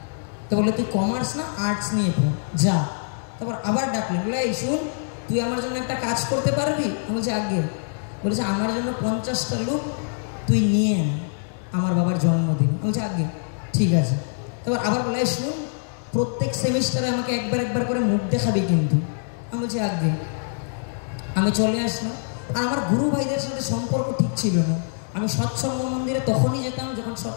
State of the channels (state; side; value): silent; right; 62 dB below the other